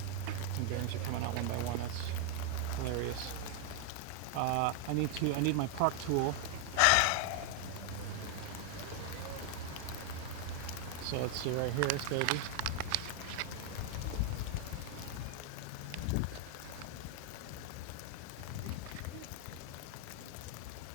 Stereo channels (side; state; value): both; different; correlation 0.00